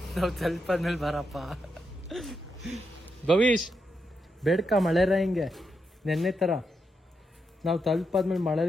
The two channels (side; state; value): both; normal; correlation 0.83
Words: ನಾವು ತಲುಪಾದ್ಮೇಲೆ ಬರಪ್ಪ ಭವಿಷ್, ಬೇಡ್ಕ ಮಳೆರ ಹಿಂಗೆ ನೆನ್ನೆ ತರ. ನಾವು ತಲುಪಾದ್ಮೇಲೆ